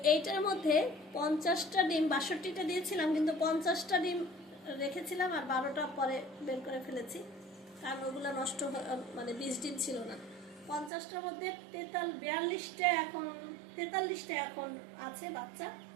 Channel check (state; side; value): drops out; left; at 10.9 s